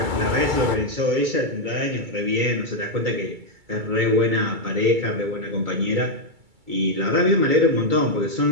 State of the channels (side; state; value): left; late; 2.3 ms